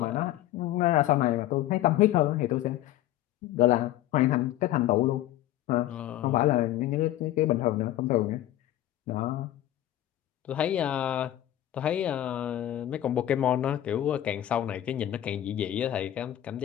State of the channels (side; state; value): right; quieter; 13.5 dB